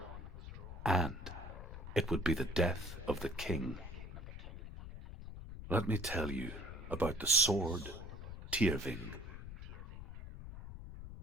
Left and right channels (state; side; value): noise; left; rumble, 10 dB below the sound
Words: and it would be the death of the king. Let me tell you about the sword Tyrving.